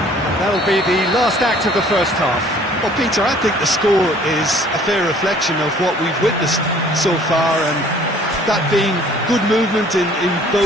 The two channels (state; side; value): normal; both; correlation 0.55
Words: And that'll be the last act of the first half. Well, Peter, I think the score is a fair reflection of what we've witnessed so far, and that being good movement in